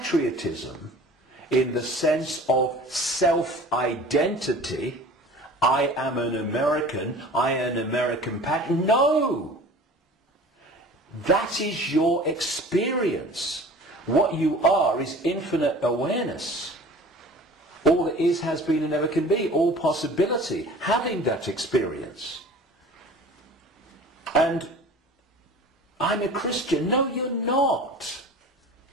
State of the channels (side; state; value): both; normal; correlation 0.43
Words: in the sense of self-identity, I am an American, I am an American patriot. No! That is your experience. What you are is infinite awareness. All that is, has been, and never can be. All possibility. Having that experience. And I'm a Christian. No, you're not.